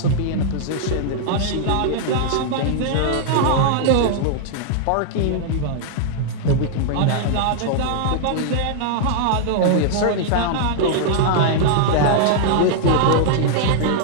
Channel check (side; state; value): both; different; correlation -0.01